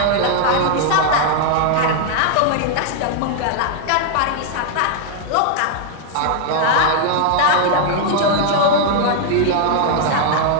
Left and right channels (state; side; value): different; both; correlation -0.01